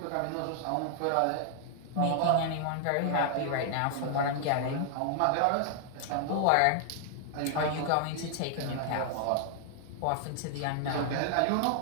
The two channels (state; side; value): different; both; correlation 0.00